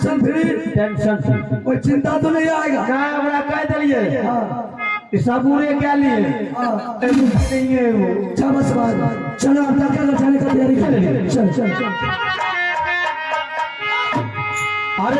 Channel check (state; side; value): identical; both; correlation 1.00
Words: फ्री टेंशन कोई चिंता तो नहीं आएगा? ना हमरा कह दिलिए हाँ सबूरे क्या लिए हाँ नहीं है वो बस बात चलो आप लड़का घर जाने का तैयारी कर लीजिए चल चल चल अरे